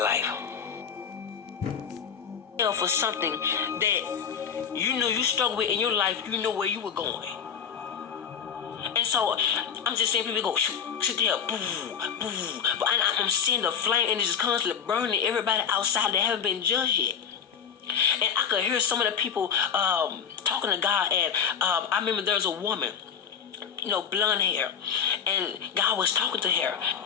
For something that you knew you struggled with in your life, you know where you were going. And so I'm just seeing people go, sit there, boo, boo. But I'm seeing the flame and it's just constantly burning everybody outside that haven't been judged yet. And I could hear some of the people talking to God. And I remember there was a woman, blonde hair. And God was talking to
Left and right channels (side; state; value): right; quieter; 7.6 dB